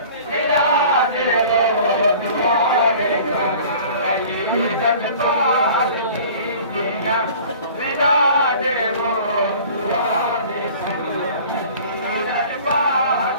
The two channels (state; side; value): inverted; both; correlation -0.46